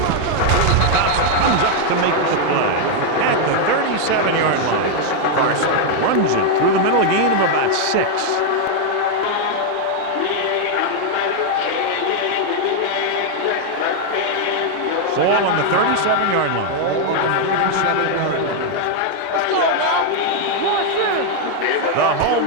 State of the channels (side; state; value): both; different; correlation 0.00